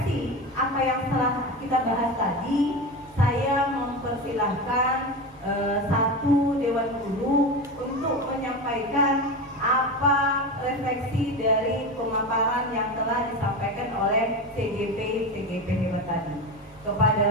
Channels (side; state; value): both; normal; correlation 0.23